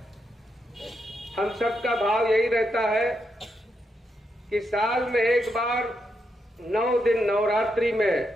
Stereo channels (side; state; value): both; normal; correlation 0.82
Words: हम सबका भाव यही रहता है कि साल में एक बार 9 दिन नवरात्रि में